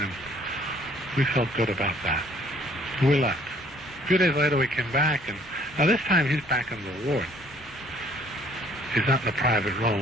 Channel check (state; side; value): normal; both; correlation 0.60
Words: and we felt good about that. We left. A few days later, we came back, and now this time he's back in the ward. He's not in the private room.